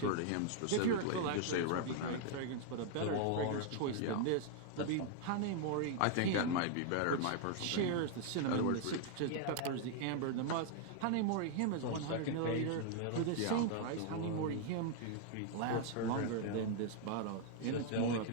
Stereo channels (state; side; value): different; both; correlation 0.00